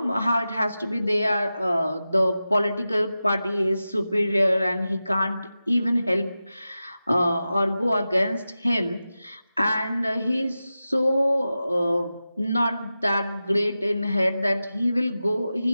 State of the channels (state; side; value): inverted; both; correlation -0.93